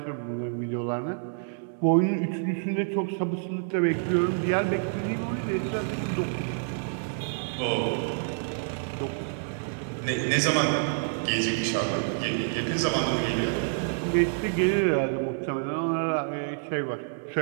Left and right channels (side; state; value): left; silent; digital silence